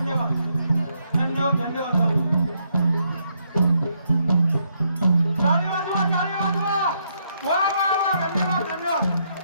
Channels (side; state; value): both; inverted; correlation -0.76